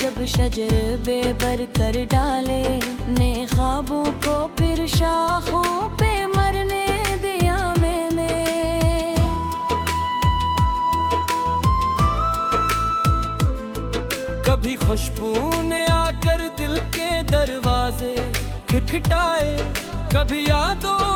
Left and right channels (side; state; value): both; identical; correlation 1.00